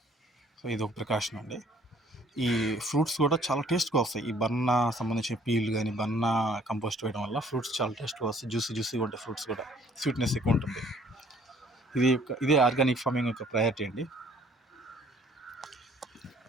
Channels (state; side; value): normal; both; correlation 0.58